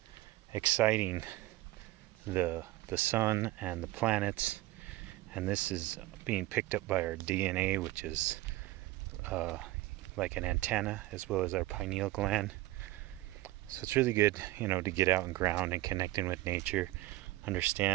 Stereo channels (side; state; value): left; quieter; 17.8 dB